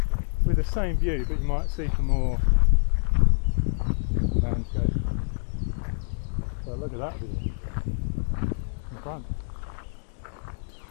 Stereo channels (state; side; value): silent; right; digital silence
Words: With the same view, but you might see some more landscape. So look at that view in front.